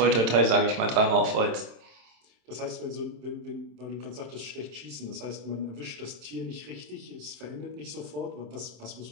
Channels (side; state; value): left; late; 27 ms